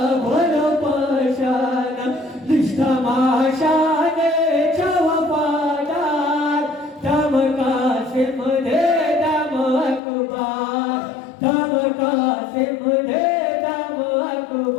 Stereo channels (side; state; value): right; drops out; at 10.0 s